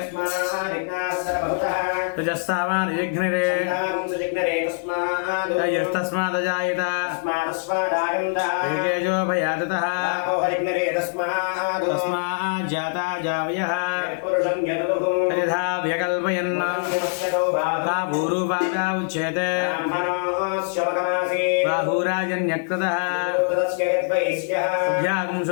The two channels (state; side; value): silent; right; digital silence